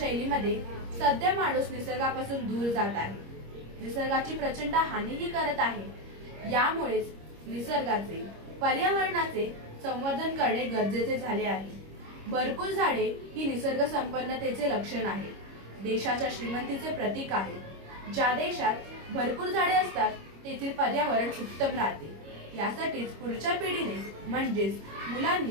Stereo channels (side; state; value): left; late; 25 ms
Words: सध्या माणूस निसर्गापासून दूर जात आहे, निसर्गाची प्रचंड हानीही करत आहे। यामुळेच निसर्गाचे, पर्यावरणाचे संवर्धन करणे गरजेचे झाले आहे। भरपूर झाडे ही निसर्ग संपन्नतेचे लक्षण आहे, देशाच्या श्रीमंतीचे प्रतीक आहे। ज्या देशात भरपूर झाडे असतात तेथील पर्यावरण उत्तम राहते। यासाठीच पुढच्या पिढीने म्हणजेच